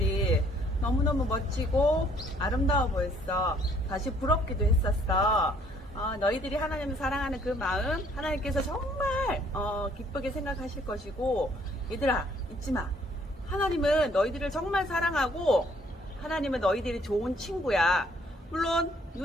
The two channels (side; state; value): both; normal; correlation 0.62